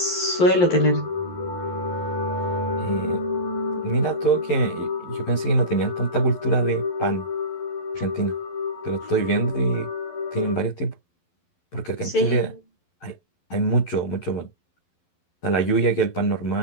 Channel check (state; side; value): late; right; 11 ms